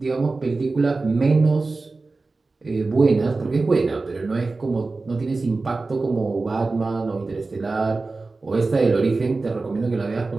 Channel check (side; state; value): left; quieter; 3.7 dB